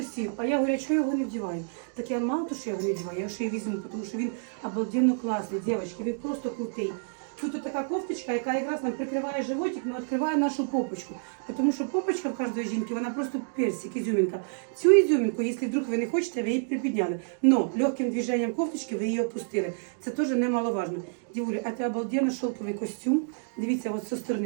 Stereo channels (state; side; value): silent; left; digital silence